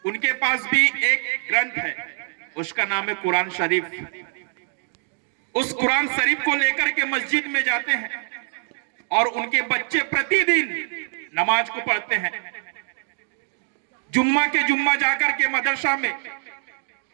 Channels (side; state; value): left; silent; 63 dB below the other